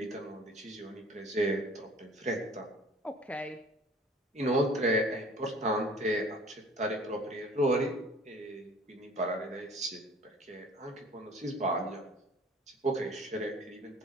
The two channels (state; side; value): normal; both; correlation 0.48